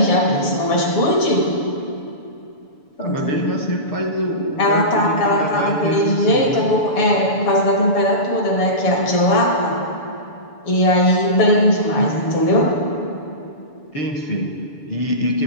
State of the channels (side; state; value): right; late; 7.0 ms